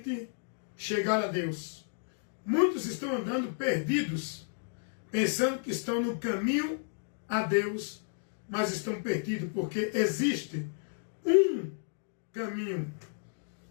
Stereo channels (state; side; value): silent; right; digital silence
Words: chegar a Deus. Muitos estão andando perdidos, pensando que estão no caminho a Deus, mas estão perdidos, porque existe um caminho